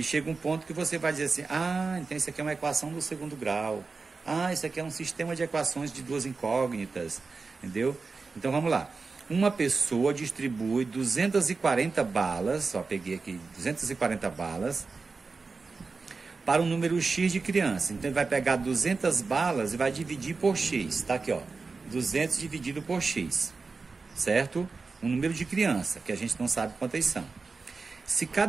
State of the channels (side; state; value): left; quieter; 4.3 dB